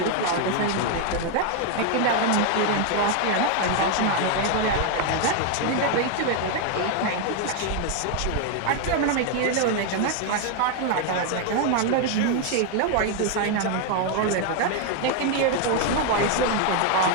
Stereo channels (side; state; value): both; different; correlation 0.00